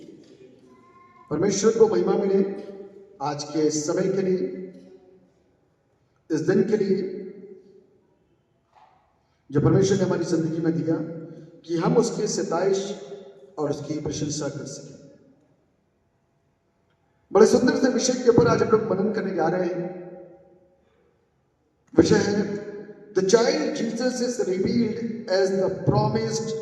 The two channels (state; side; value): identical; both; correlation 1.00